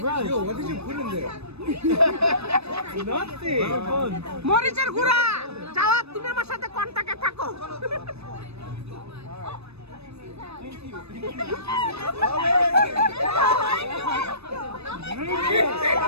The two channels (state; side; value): late; left; 0.79 ms